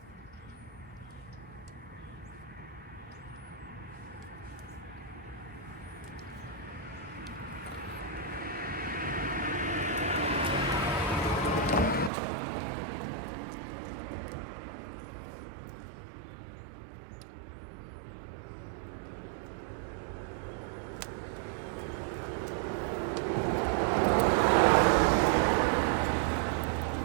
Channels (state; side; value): drops out; left; at 12.1 s